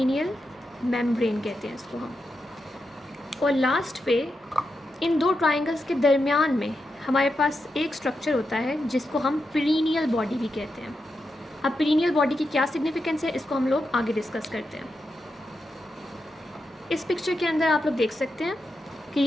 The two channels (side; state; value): both; normal; correlation 0.87